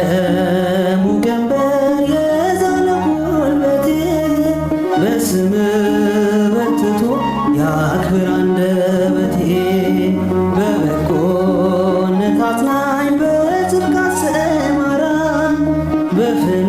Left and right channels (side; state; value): both; identical; correlation 1.00